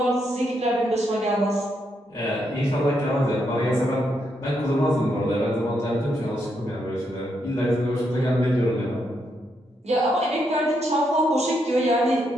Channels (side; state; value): both; normal; correlation 0.79